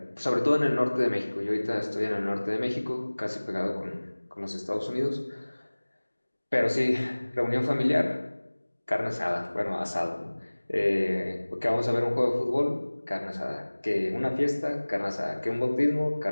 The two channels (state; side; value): inverted; both; correlation -1.00